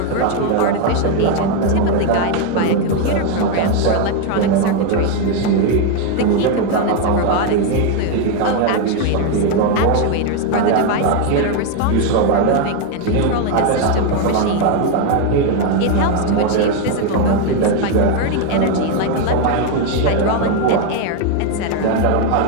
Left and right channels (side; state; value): both; different; correlation 0.01